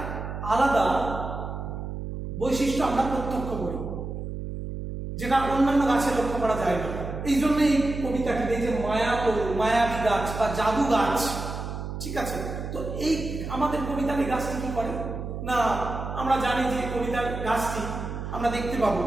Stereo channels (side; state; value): right; noise; hum, 6 dB below the sound